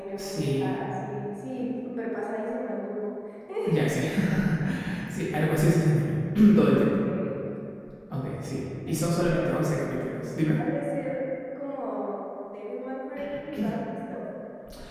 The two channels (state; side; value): identical; both; correlation 1.00